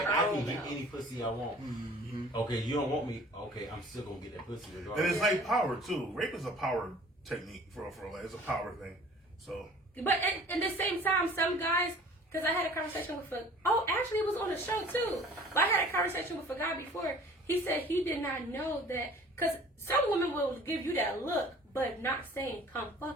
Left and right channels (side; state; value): both; normal; correlation 0.49